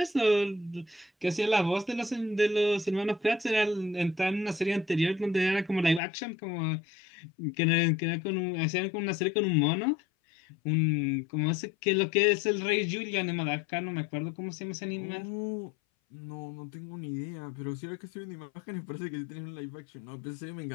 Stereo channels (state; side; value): drops out; right; at 6.0 s